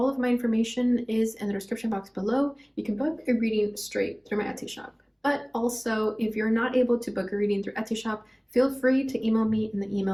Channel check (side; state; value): both; identical; correlation 1.00